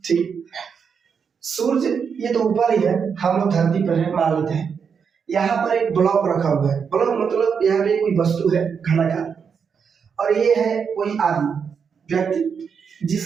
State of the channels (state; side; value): quieter; left; 6.5 dB